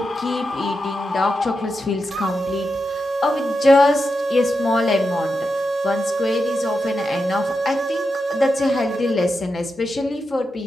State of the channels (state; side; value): normal; both; correlation 0.88